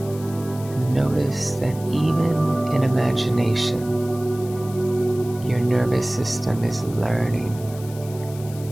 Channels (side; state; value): left; noise; hiss, 19 dB below the sound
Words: Notice that even in imagination, your nervous system is learning.